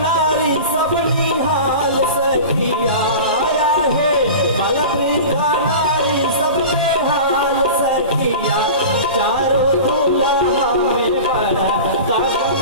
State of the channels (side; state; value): both; inverted; correlation -0.34